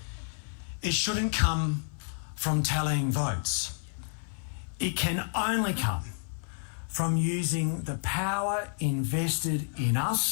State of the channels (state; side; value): silent; right; digital silence